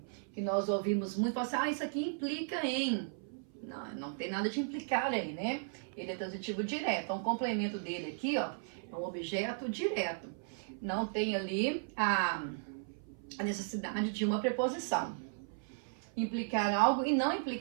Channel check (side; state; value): left; silent; 54 dB below the other